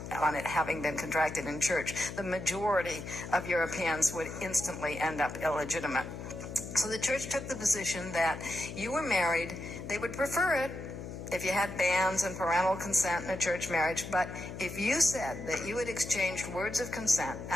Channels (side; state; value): left; noise; hum, 9 dB below the sound